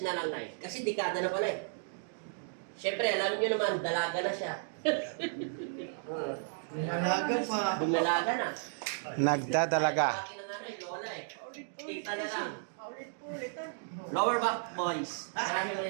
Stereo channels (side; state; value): left; silent; digital silence